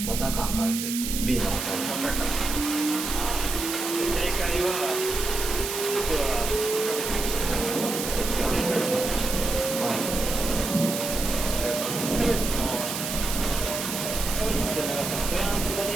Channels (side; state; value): right; noise; hiss, 4 dB below the sound